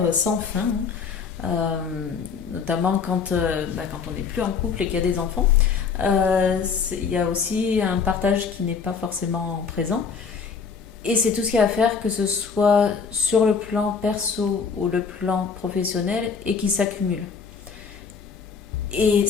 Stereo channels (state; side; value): quieter; right; 5.8 dB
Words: sans fin, hein. Notamment quand on n'est plus en couple et qu'il y a des enfants. Il y a aussi un partage qui n'est pas forcément présent. Et c'est tout ce qu'il y a à faire, que ce soit sur le plan perso ou le plan professionnel, et qui s'accumule. Et